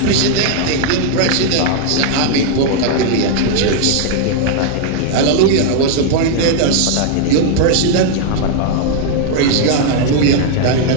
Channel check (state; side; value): different; both; correlation 0.00